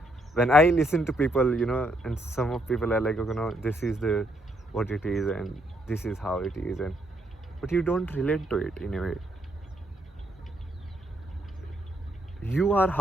When I listen to people, you know, and some of people are like, you know, this is the what it is and this is how it is, and but you don't relate to it in a way. You are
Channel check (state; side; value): normal; both; correlation 0.74